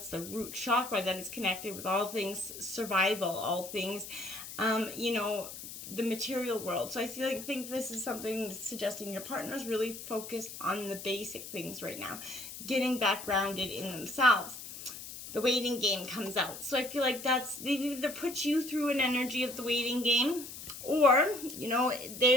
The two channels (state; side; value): noise; left; hiss, 11 dB below the sound